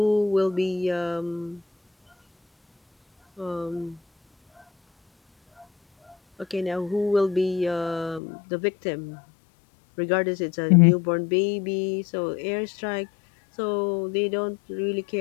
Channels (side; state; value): right; drops out; at 8.2 s